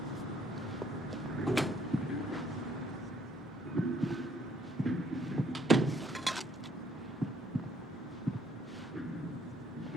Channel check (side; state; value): both; normal; correlation 0.66